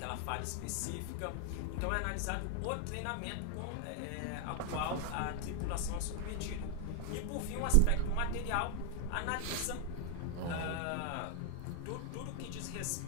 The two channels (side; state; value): both; different; correlation 0.00